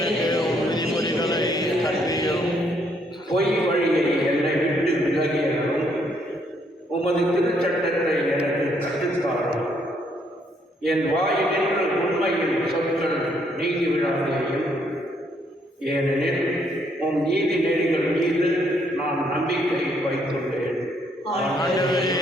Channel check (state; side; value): normal; both; correlation 0.70